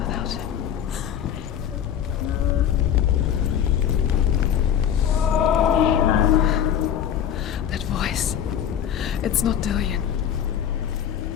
him. That voice. It's not Dillion.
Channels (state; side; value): quieter; right; 9.5 dB